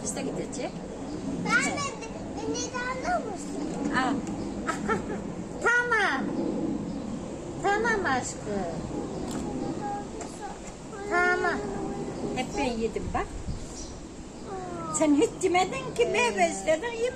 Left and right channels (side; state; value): both; identical; correlation 1.00